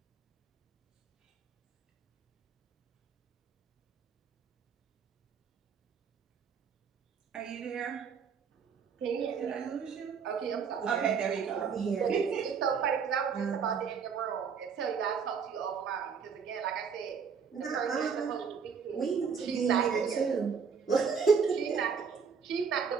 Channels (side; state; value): left; quieter; 6.3 dB